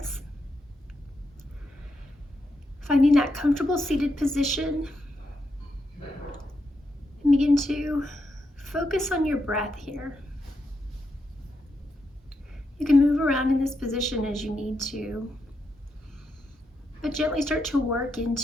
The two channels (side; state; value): both; normal; correlation 0.83